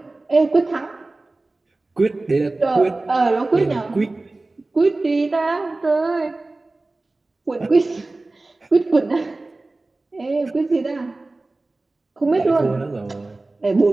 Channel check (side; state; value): left; quieter; 3.1 dB